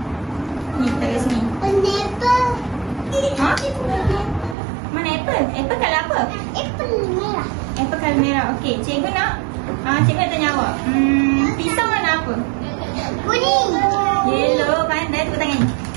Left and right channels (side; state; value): left; drops out; at 4.5 s